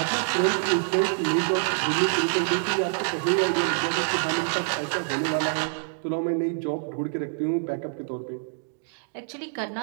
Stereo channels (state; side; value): silent; left; digital silence